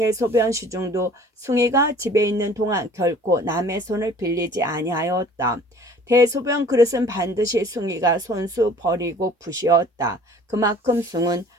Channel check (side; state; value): both; normal; correlation 0.50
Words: 시중도 숭이가 집에 있는 동안 결코 남의 손을 빌리지 아니하였다. 대소변 그릇은 반드시 숭이가 손수 버리고 푸시었다. 그만큼 숭은